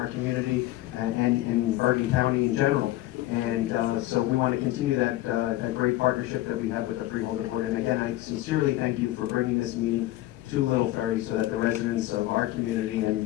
community and in Bergen County in general. And so we want to continue that great partnership that we have with the Freeholder Board. And again, I sincerely thank you for bringing this meeting to Little Ferry so that the residents of our community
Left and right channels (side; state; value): right; quieter; 16.2 dB